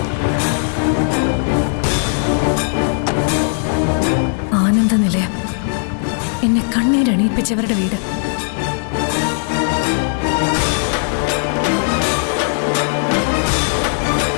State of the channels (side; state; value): right; silent; 58 dB below the other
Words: ആനന്ദ നിലയം. കണ്ണീരണിയിപ്പിച്ചവരുടെ വീട്.